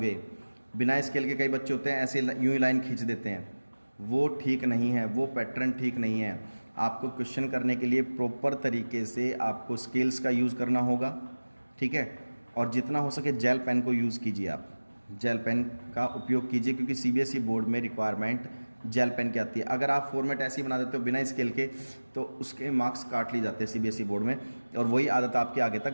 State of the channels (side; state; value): both; inverted; correlation -1.00